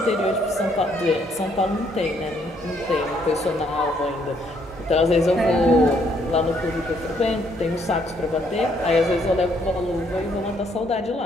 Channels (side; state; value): both; normal; correlation 0.69